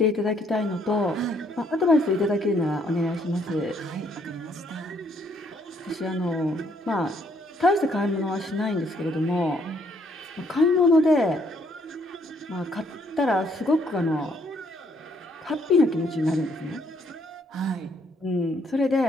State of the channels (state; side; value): normal; both; correlation 0.68